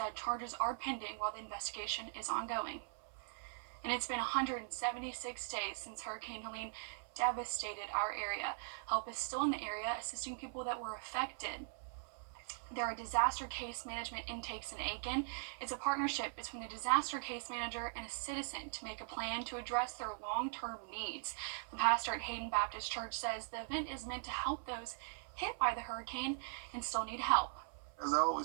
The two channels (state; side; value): silent; left; 50 dB below the other